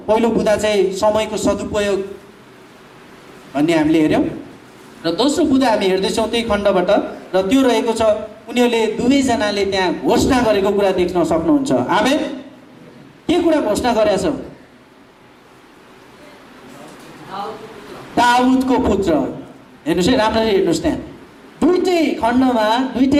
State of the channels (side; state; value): both; identical; correlation 1.00